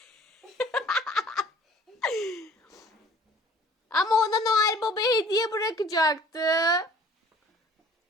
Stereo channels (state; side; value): normal; both; correlation 0.51